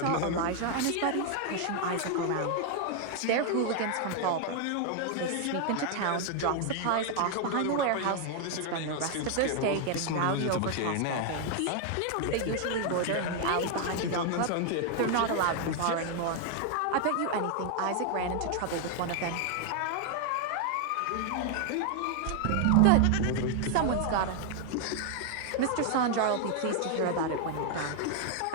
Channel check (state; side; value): different; both; correlation 0.00